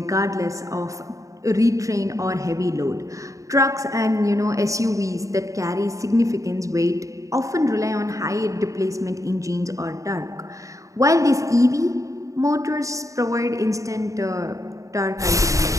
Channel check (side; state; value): left; late; 0.16 ms